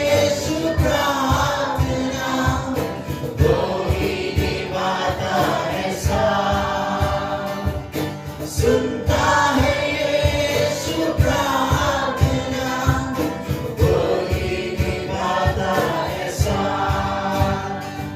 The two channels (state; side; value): identical; both; correlation 1.00